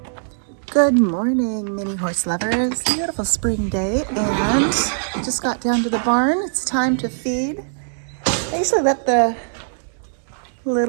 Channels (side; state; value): left; silent; digital silence